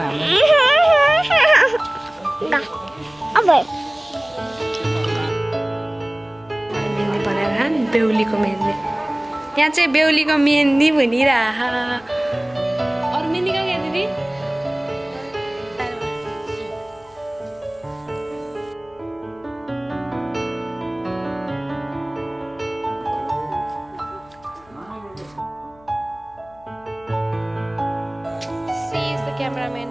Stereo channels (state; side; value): noise; left; hum, 28 dB below the sound